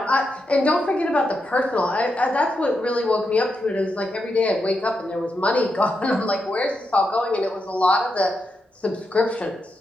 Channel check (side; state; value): both; normal; correlation 0.85